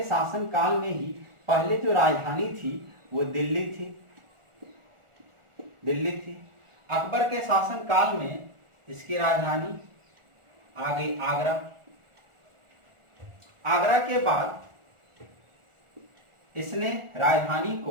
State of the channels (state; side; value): late; left; 1.4 ms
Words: शासन काल में ही पहले जो राजधानी थी वो दिल्ली थी। अकबर के शासन काल में इसकी राजधानी आ गई आगरा। आगरा के बाद इसने राजधानी